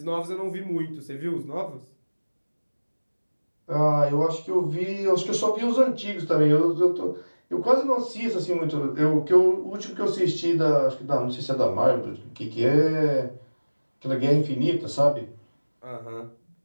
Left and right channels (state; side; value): inverted; both; correlation -1.00